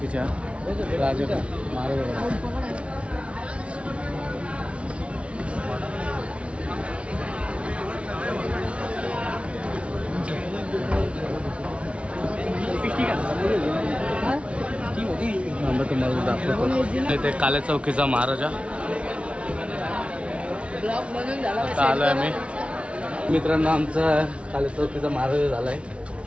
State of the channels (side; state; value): left; late; 0.061 ms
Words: राजा महाराजाजवळ। तुम्हाला दाखवतो इथे काल्या चौकीचा महाराजा। आता आलोय आम्ही मित्रांनो, आमचा काल्या चौकीचा महाराजा झालाय।